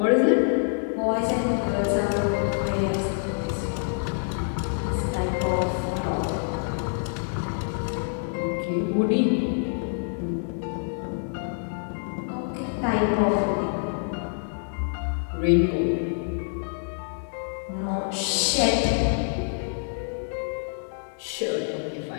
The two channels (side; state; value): right; silent; digital silence